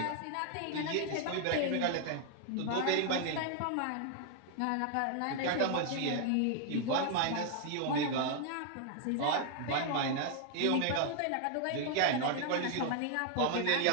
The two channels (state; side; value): different; both; correlation 0.00